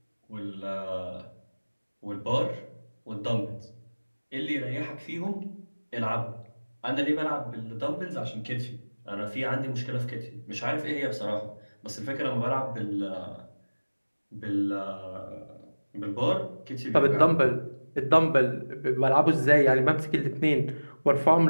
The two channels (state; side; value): inverted; both; correlation -1.00